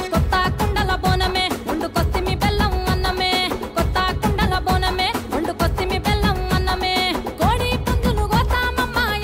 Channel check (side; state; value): both; identical; correlation 1.00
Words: కొత్త కుండల బోనమే వండుకొస్తిమి బెల్లం అన్నమే కొత్త కుండల బోనమే వండుకొస్తిమి బెల్లం అన్నమే కోడి పుంజులు గోతామమ్మ